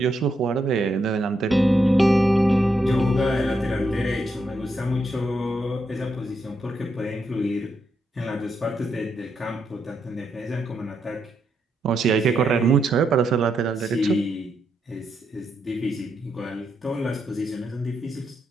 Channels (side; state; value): both; normal; correlation 0.81